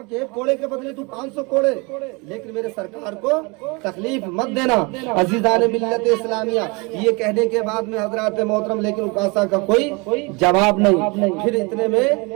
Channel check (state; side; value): quieter; left; 28.3 dB